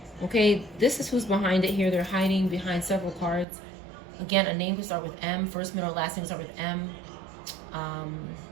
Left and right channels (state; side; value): drops out; left; at 3.5 s